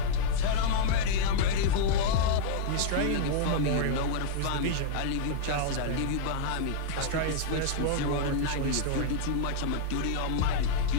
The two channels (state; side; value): different; both; correlation -0.01